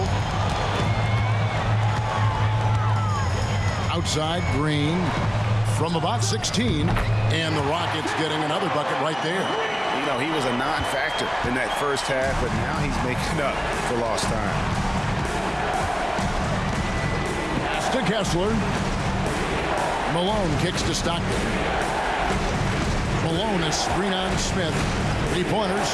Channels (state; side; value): identical; both; correlation 1.00